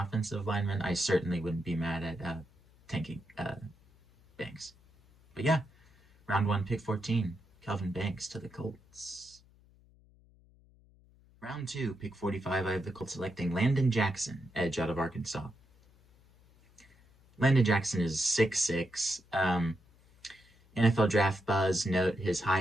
lineman, I certainly wouldn't be mad at tanking Banks. But yeah, round one, pick 14, Kelvin Banks to the Colts. Round two, pick 45, I have the Colts selecting Landon Jackson, edge out of Arkansas. Landon Jackson is 6'6". NFL draft buzz note his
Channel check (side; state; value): left; noise; hum, 29 dB below the sound